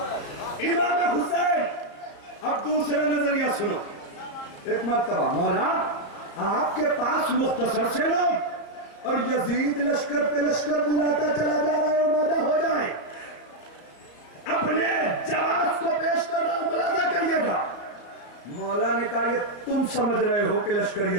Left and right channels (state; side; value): late; right; 34 ms